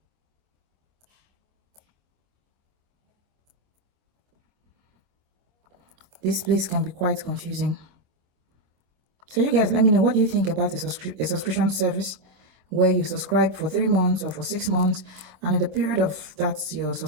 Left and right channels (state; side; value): late; left; 25 ms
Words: This place can be quite confusing. So you guys, let me know, what do you think about a subscription service where you subscribe for 3 months or for 6 months, and in the period of that's your